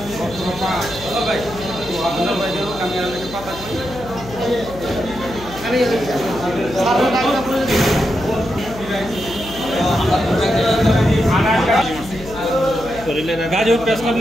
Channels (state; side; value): noise; left; hum, 15 dB below the sound